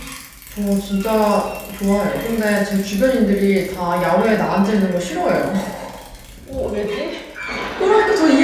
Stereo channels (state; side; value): identical; both; correlation 1.00